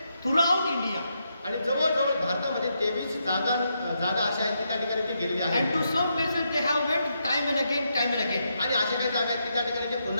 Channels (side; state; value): both; inverted; correlation -0.81